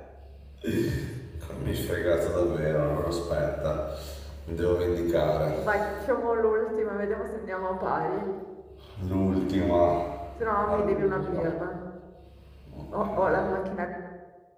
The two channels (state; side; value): identical; both; correlation 1.00